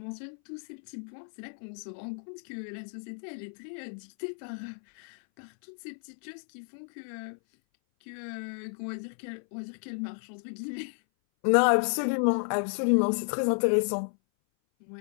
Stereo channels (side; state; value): right; silent; 56 dB below the other